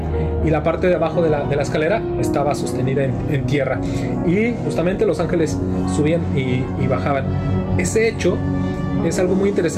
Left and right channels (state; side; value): identical; both; correlation 1.00